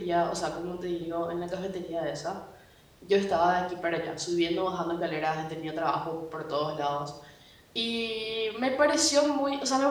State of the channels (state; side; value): identical; both; correlation 1.00